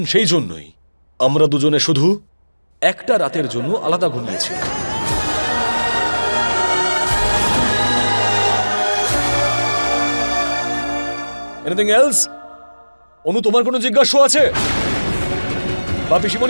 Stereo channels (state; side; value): inverted; both; correlation -1.00